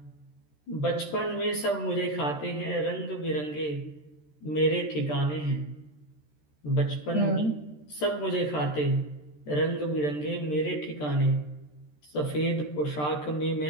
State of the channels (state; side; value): late; right; 13 ms